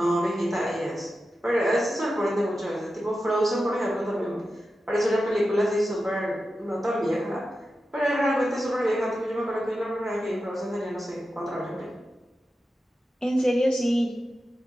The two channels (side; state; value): both; normal; correlation 0.91